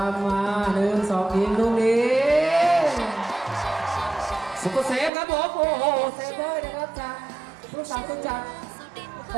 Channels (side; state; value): left; drops out; at 5.1 s